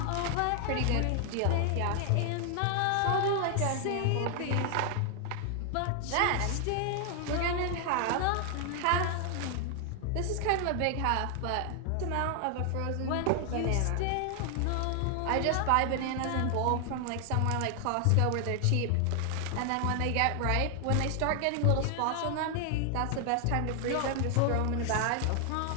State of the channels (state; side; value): different; both; correlation 0.00